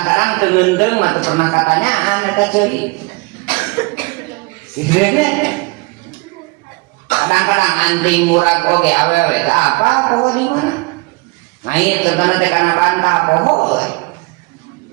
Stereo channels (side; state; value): left; quieter; 27.0 dB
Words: teungeunteung mah teu pernah katanyaan eta ceuri. Kitu kadang-kadang anting murag oge awewe teh apa poho di mana? Ngait contohna teh kana bantah poho.